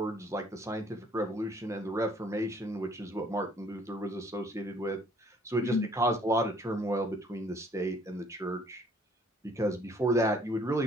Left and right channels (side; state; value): both; normal; correlation 0.60